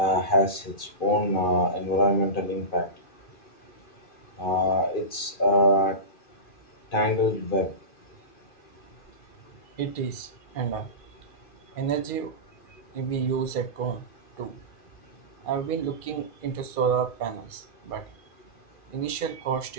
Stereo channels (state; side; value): late; right; 2.5 ms